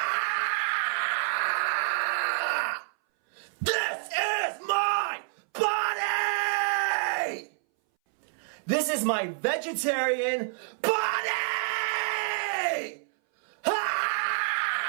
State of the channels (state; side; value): silent; left; 59 dB below the other